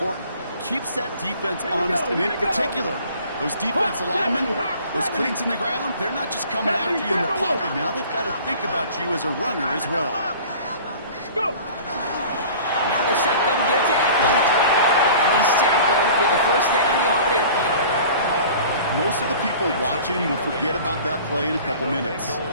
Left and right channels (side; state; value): both; inverted; correlation -0.45